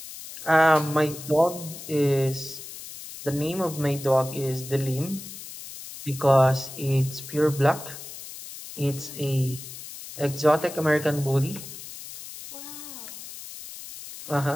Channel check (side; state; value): left; noise; hiss, 13 dB below the sound